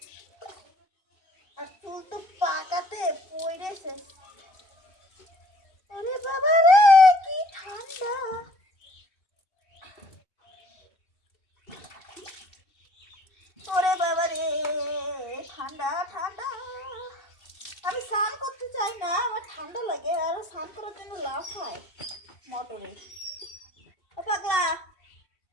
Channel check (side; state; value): right; late; 2.7 ms